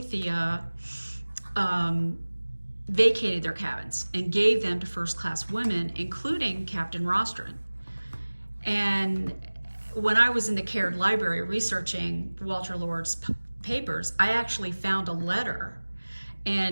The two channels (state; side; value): inverted; both; correlation -1.00